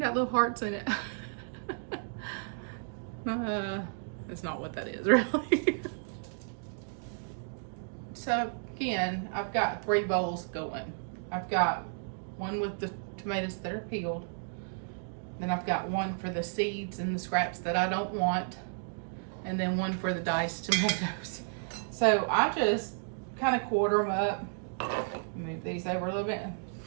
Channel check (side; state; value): left; silent; digital silence